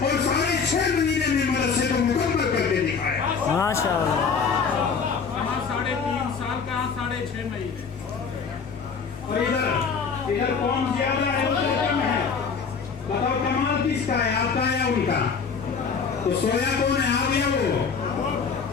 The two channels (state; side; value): quieter; right; 5.7 dB